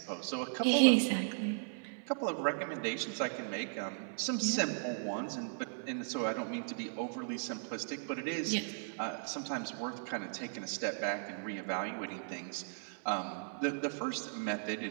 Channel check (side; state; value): left; silent; digital silence